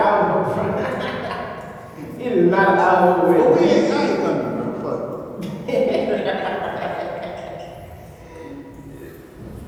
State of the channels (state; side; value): identical; both; correlation 1.00